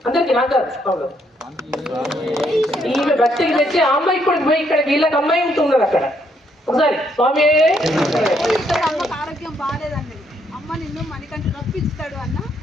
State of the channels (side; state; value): both; normal; correlation 0.72